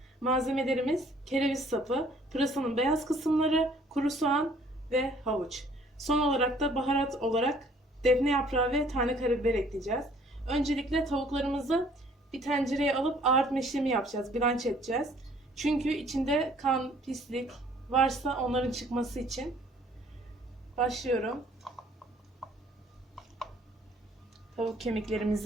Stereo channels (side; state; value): both; normal; correlation 0.58